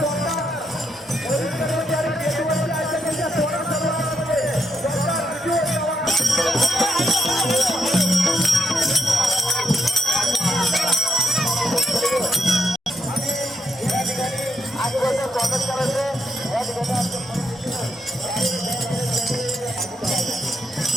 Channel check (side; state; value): both; normal; correlation 0.79